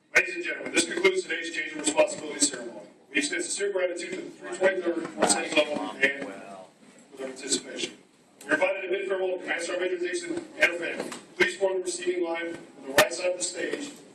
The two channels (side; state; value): both; identical; correlation 1.00